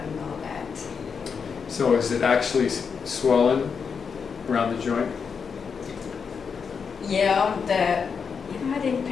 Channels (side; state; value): right; quieter; 6.0 dB